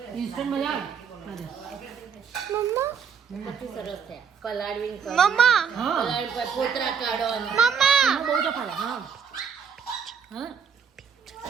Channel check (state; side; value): quieter; left; 6.8 dB